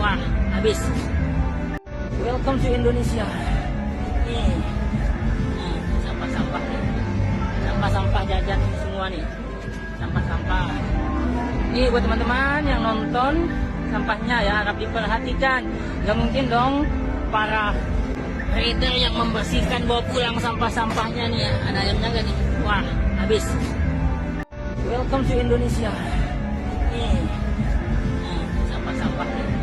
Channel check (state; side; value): identical; both; correlation 1.00